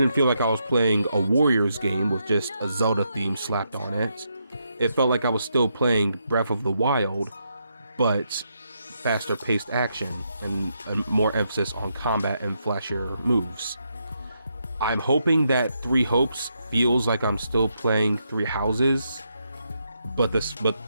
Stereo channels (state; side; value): inverted; both; correlation -0.80